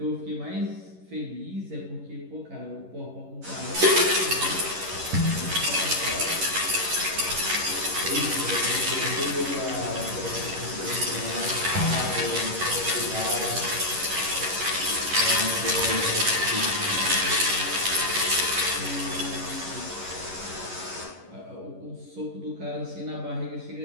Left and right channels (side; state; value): left; late; 11 ms